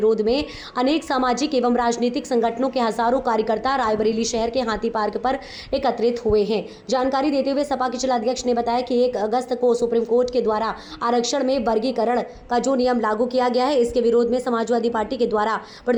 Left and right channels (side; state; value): both; identical; correlation 1.00